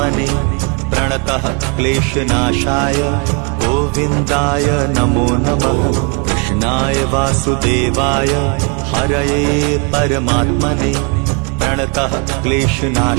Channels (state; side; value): quieter; left; 35.7 dB